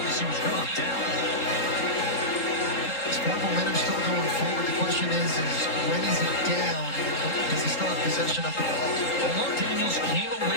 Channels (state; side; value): late; right; 3.8 ms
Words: he was really down. Sport momentum still going forward. The question is when is he down? Does he still have possession of the ball? Omar Daniels came away